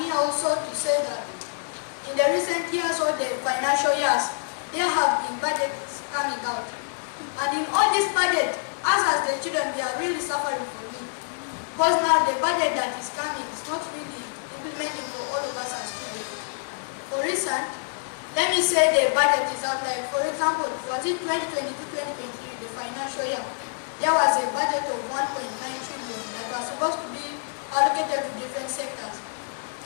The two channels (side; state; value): right; silent; 61 dB below the other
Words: here also to say that in the recent years or the financial years, there have been budgets coming out. And in all this budget, us as the children, we are really suffering from it. Because now the budget that is coming is not really implementing for all of us as students. For instance, let me say the budget is out, like for example, was it 2022-2023, the financial year, there was a budget of 1.9 trillion that was supposed to be allocated to different sectors.